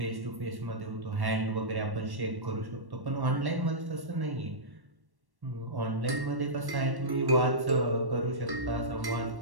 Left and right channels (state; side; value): late; left; 1.1 ms